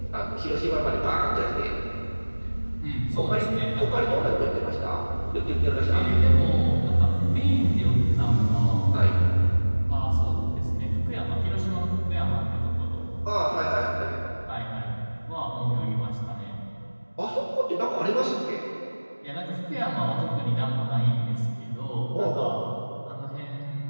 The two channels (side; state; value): both; inverted; correlation -1.00